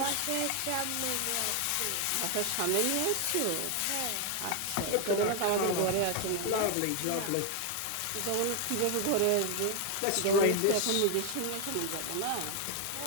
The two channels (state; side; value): different; both; correlation 0.01